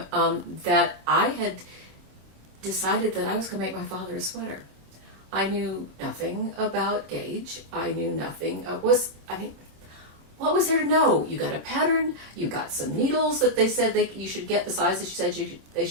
that I had decided that I was going to make my father a sweater. I knew nothing about gauge. I knew nothing. What was there to know? You got a pattern, you got some needles that they said you should get, the size that you said they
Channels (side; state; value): left; late; 26 ms